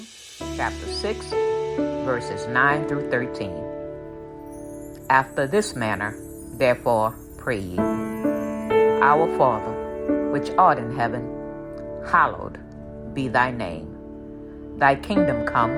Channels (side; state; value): both; identical; correlation 1.00